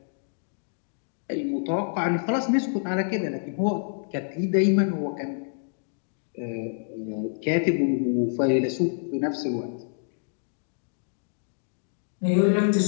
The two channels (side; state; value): right; silent; digital silence